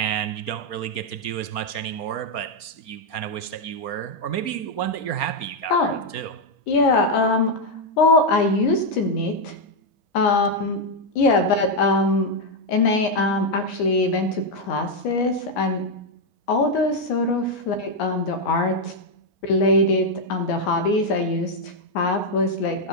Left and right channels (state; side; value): late; right; 4.3 ms